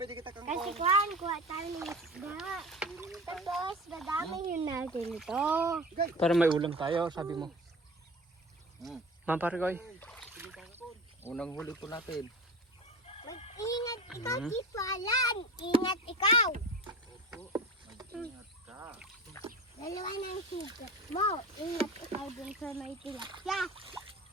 kita kang Kasi kuha tayo ng isda. Tapos, dadamihin natin ito. Para may ulam tayo, sabi mo. Ma'am Parikoy. Unang huli po natin. Mag-ingat ikaw, Tito Alan. Ingat ikaw. Ingat ka. Dalawa na ang sigat mo. Ingat ikaw dun sa may tilapia.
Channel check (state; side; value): normal; both; correlation 0.33